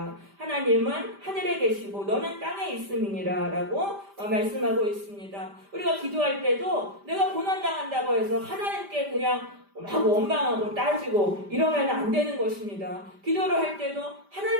하나님은 하늘에 계시고 너는 땅에 있음이니라 라고 말씀하고 있습니다. 우리가 기도할 때도 내가 고난당한다고 해서 하나님께 그냥 막 원망하고 따지고 이러면 안 되는 것입니다. 기도를 할 때도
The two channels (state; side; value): late; left; 5.0 ms